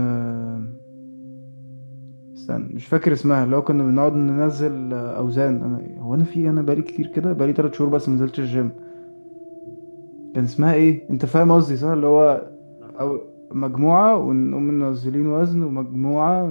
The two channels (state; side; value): inverted; both; correlation -1.00